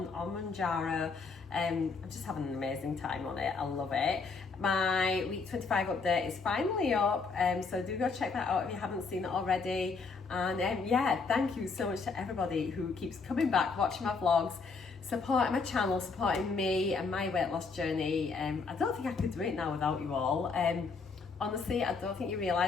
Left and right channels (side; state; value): right; quieter; 4.6 dB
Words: on Mounjaro. I'm just having an amazing time on it. I love it. My week 25 update is finally up, so do go check that out if you haven't seen it already. And yeah, thank you so much to everybody who keeps coming back, watching my vlogs, supporting my channel, supporting me and my weight loss journey. I don't think I could do it now without you all. Honestly, I don't think you